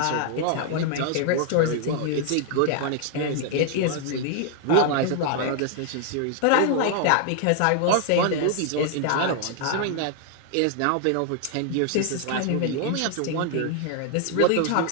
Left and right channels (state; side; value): different; both; correlation 0.00